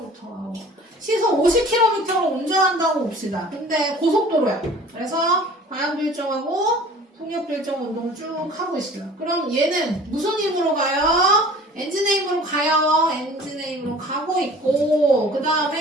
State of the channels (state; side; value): normal; both; correlation 0.46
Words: 하고. 시속 50km로 운전한다고 봅시다. 근데 고속도로야. 그래서 방향도 일정하고 속력도 일정 운동을 쭉 하고 있어요. 그럼 얘는 무슨 힘으로 가요? 엔진의 힘으로 가요. 엔진의 힘으로 가고 있고, 그